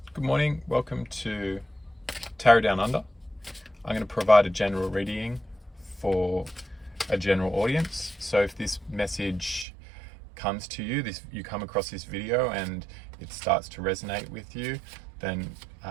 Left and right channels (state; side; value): drops out; left; at 9.7 s